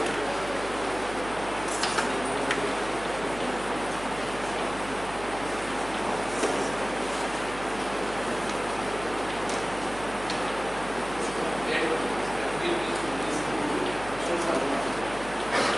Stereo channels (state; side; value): noise; right; hum, 14 dB below the sound